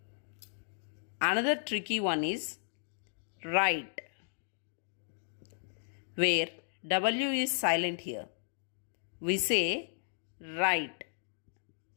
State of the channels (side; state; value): right; silent; digital silence